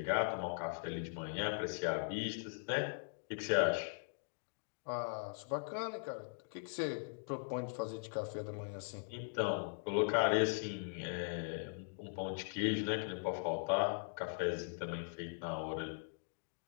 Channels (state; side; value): silent; right; digital silence